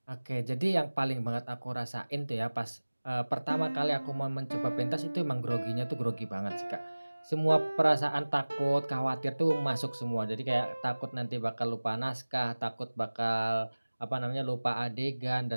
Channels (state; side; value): inverted; both; correlation -1.00